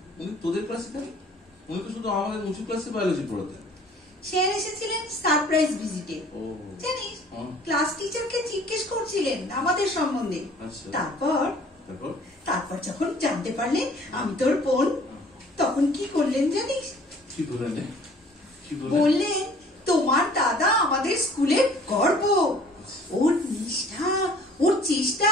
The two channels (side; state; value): both; normal; correlation 0.53